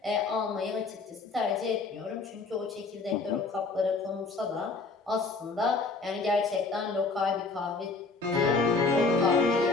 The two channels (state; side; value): quieter; right; 4.0 dB